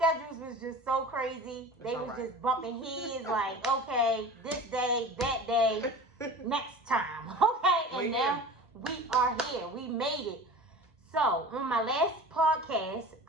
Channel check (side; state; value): both; normal; correlation 0.37